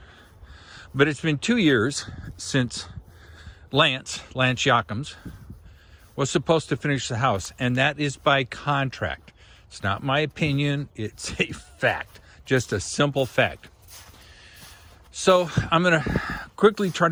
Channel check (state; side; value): identical; both; correlation 1.00